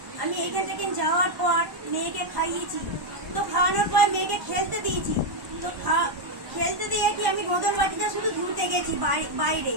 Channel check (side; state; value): left; late; 1.2 ms